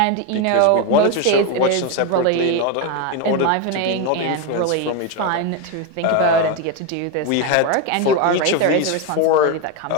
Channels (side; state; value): both; different; correlation 0.03